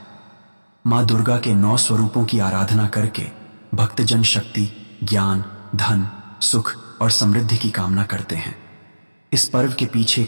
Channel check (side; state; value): both; inverted; correlation -1.00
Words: मां दुर्गा के 9 स्वरूपों की आराधना करके भक्तजन शक्ति, ज्ञान, धन, सुख और समृद्धि की कामना करते हैं। इस पर्व के पीछे